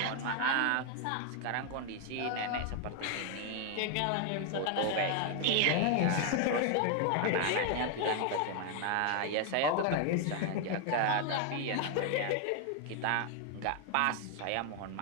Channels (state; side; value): different; both; correlation 0.00